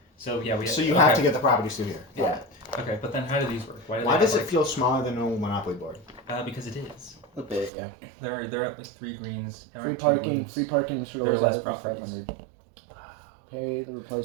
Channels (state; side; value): drops out; left; at 7.7 s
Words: So yeah, So you have to get the properties through here. Yeah. Okay, but then how do these work? Why does it feel smaller than a Monopoly board? Because it is. A bit, yeah. They're at like 3 greens. Free parking should There are always less have it for properties. 500. Pay the I